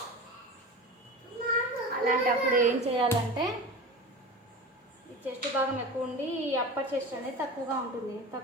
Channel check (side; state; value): both; normal; correlation 0.31